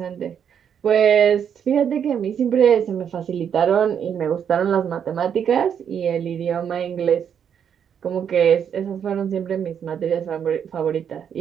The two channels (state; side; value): quieter; left; 8.1 dB